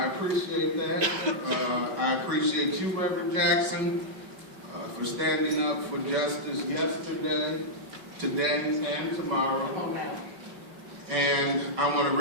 appreciate that. I appreciate you, Reverend Jackson, for standing up for justice yesterday, today, and tomorrow. And I want to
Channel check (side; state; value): left; late; 5.3 ms